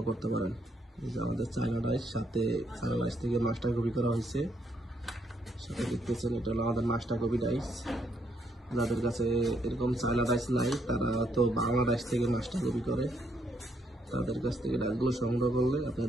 করতে পারেন। এই যে আমাদের চায়না ডাইস, সাথে চায়না ডাইস থেকে মাস্টার কপি করা হয়েছে। সাথে দেখতেছেন এটা হলো আমাদের মাস্টার কপি ডাইস। যাদের কাছে এরকম চায়না ডাইস নাই তারা তো বাংলা ডাইস থেকে মাস্টার কপি করে, তাদের কাছ থেকে ডাইসগুলো সংগ্রহ করলে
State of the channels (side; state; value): both; normal; correlation 0.74